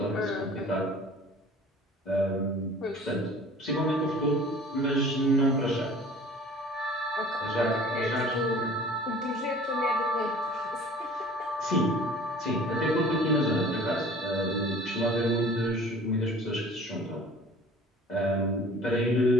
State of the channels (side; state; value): both; normal; correlation 0.47